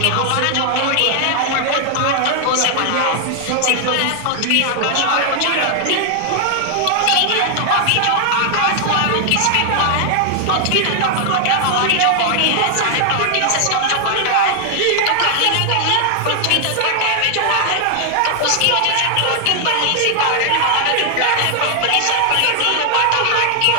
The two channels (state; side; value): different; both; correlation 0.00